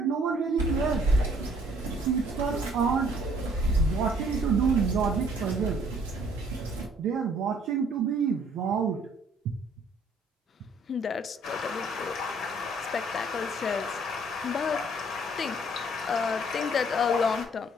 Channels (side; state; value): both; normal; correlation 0.60